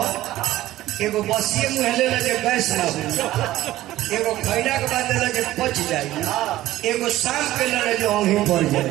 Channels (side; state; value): left; quieter; 15.4 dB